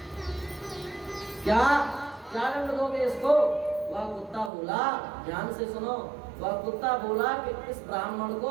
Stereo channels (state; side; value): drops out; left; at 4.5 s